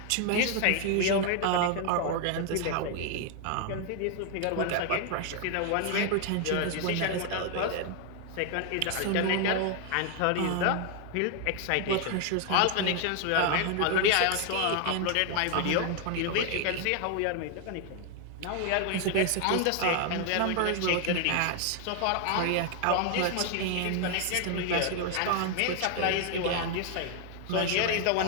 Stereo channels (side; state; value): both; different; correlation 0.00